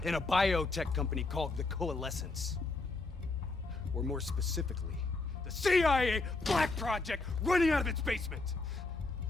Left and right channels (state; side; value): quieter; right; 3.5 dB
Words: in a biotech company called the Coalescence. Or more specifically, the CIA Black Project running out of its basement.